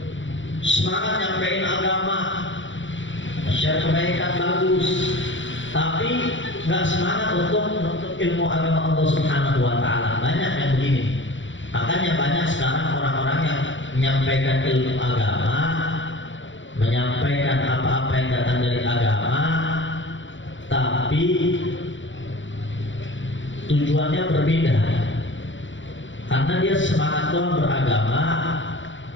Semangat nyampein agama, share kebaikan bagus, tapi nggak semangat untuk menuntut ilmu agama Allah Subhanahu wa taala. Banyak yang begini. Makanya banyak sekarang orang-orang yang menyampaikan ilmu agama, menyampaikan apa-apa yang datang dari agama, tapi tujuannya berbeda. Karena dia semangat doang beragama,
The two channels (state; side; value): late; right; 0.55 ms